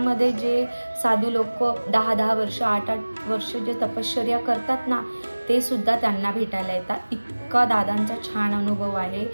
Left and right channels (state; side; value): inverted; both; correlation -1.00